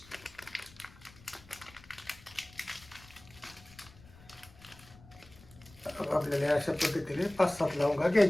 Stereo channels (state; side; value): noise; left; rumble, 22 dB below the sound